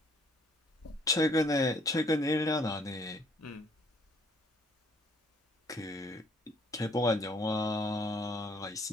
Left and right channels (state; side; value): normal; both; correlation 0.62